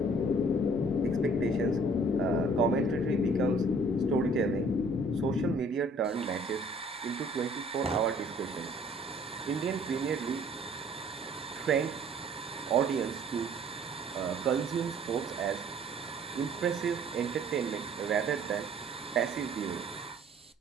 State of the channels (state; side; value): normal; both; correlation 0.56